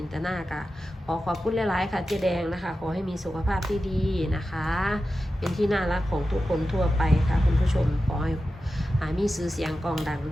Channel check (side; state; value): both; normal; correlation 0.92